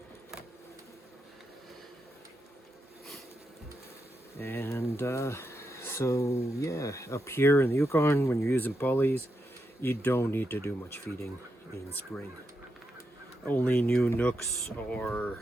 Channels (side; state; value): both; normal; correlation 0.84